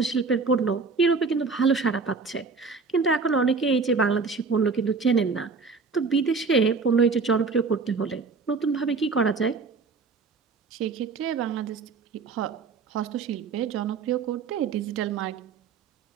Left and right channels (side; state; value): left; quieter; 4.6 dB